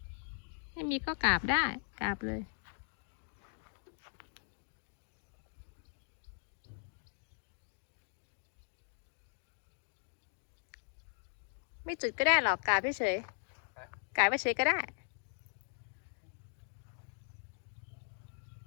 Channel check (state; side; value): silent; right; 52 dB below the other